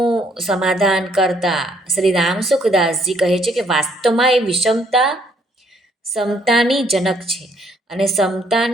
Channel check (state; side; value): normal; both; correlation 0.67